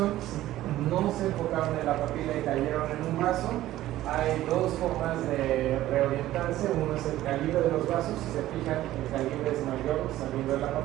Si no se enfocaron en la papila y cayeron en un vaso, hay dos formas de reorientarse. Uno es el calibre de los vasos. Si se fijan, el calibre es mayor saliendo de la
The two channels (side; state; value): left; quieter; 14.7 dB